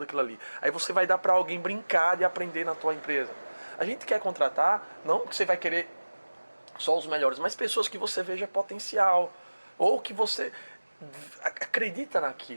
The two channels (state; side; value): inverted; both; correlation -1.00